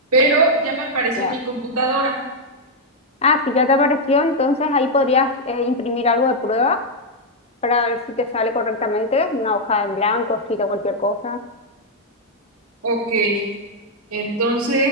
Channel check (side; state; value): both; normal; correlation -0.02